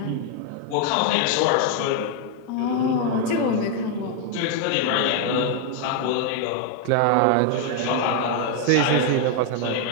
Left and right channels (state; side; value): different; both; correlation 0.00